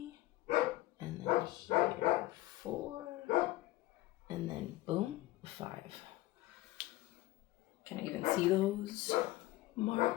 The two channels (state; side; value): quieter; right; 17.6 dB